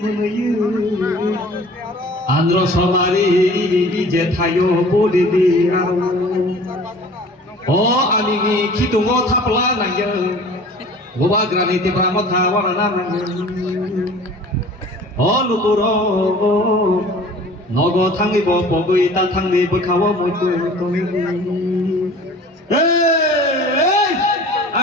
আন্ধ্র সমারি যে থায়ো পুদ্রদি ও আমি খিতুঙ্গ থাপলা নাইयो গোবা গ্রানি তিব্রা মথা ওয়ানা নাইयो ও লুকুর নগ থাঙ্গিব বগৈ তা থাঙ্গি বখাও মইতো তুমি এই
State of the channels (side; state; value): both; normal; correlation 0.46